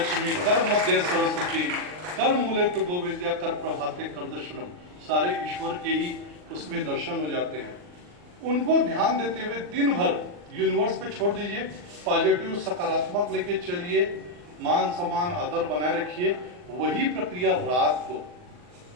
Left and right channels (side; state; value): left; late; 40 ms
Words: कर मध्य सरस्वती कर मूले तो गोविंद्या कर प्रभाते कर दर्शनम। सारे ईश्वर के ही उसमें दर्शन हो जाते हैं। उनको ध्यान देते हुए दिन भर यूनिवर्स पे छोड़ दीजिए, पॉजिटिव सकारात्मक लेके चलिए, मान सम्मान आदर बनाए रखिए। वही प्रक्रिया रात को